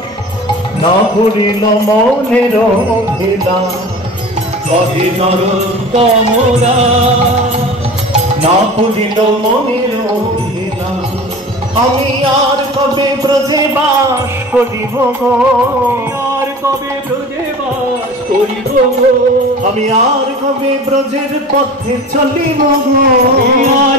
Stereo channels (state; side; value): normal; both; correlation 0.37